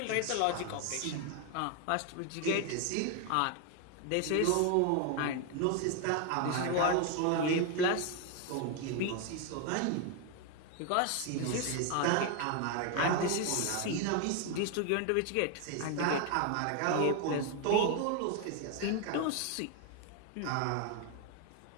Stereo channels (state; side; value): different; both; correlation 0.01